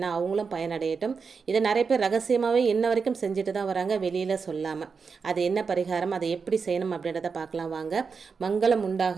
அவங்களும் பயனடையட்டும். இதை நிறைய பேர் ரகசியமாகவே இன்ன வரைக்கும் செஞ்சுட்டு தான் வராங்க, வெளியில் சொல்லாமல். அது என்ன பரிகாரம், அதை எப்படி செய்யணும் அப்படின்றத பார்க்கலாம் வாங்க. மங்களம்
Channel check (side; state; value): left; quieter; 5.3 dB